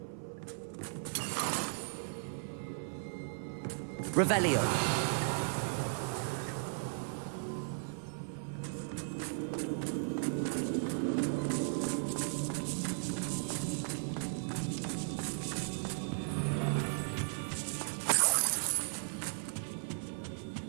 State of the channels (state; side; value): silent; left; 54 dB below the other